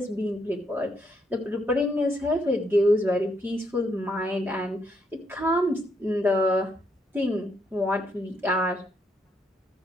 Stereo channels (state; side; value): normal; both; correlation 0.75